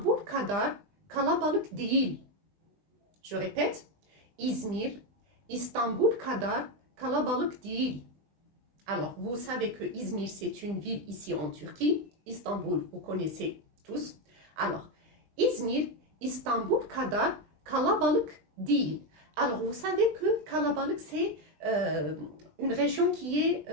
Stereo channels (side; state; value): left; late; 20 ms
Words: kadar kalabalık değil. Je répète, İzmir, İstanbul kadar kalabalık değil. Alors, vous savez que İzmir, c'est une ville ici en Turquie. Istanbul, vous connaissez tous. Alors, İzmir, İstanbul kadar kalabalık değil. Alors, vous savez que kalabalık, c'est une région qui est